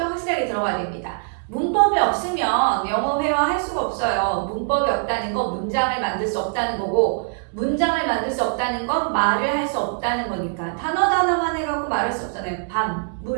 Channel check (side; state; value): left; silent; digital silence